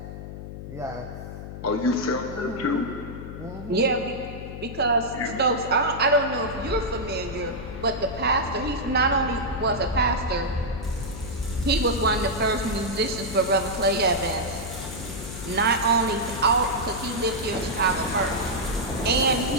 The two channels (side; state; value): left; noise; hum, 10 dB below the sound